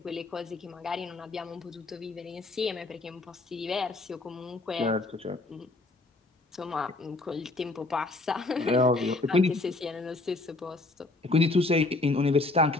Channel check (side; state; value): right; quieter; 3.1 dB